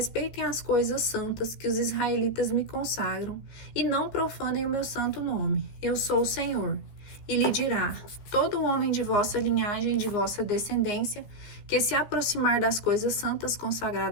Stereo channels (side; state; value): right; late; 14 ms